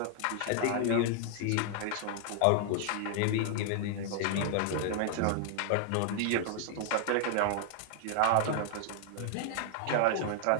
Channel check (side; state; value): both; different; correlation 0.00